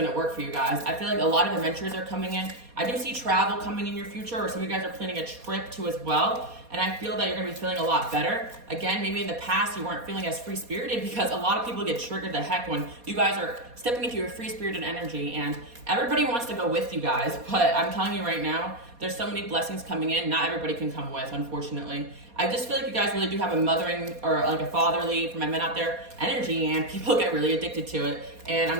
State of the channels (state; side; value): late; left; 4.2 ms